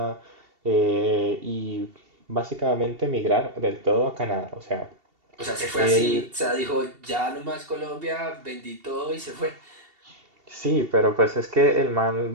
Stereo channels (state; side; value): late; left; 2.7 ms